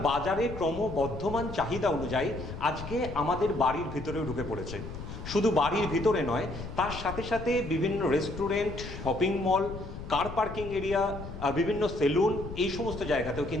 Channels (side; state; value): left; noise; rumble, 10 dB below the sound